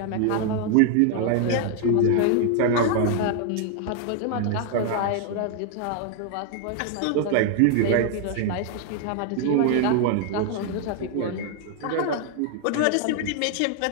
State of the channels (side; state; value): both; different; correlation 0.00